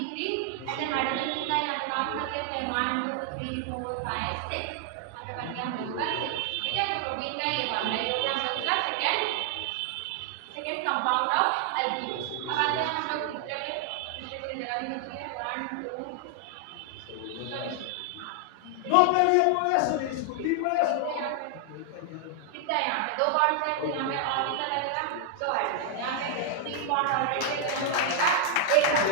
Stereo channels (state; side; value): different; both; correlation 0.00